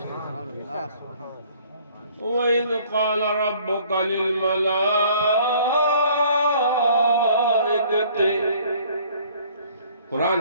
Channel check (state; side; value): inverted; both; correlation -0.56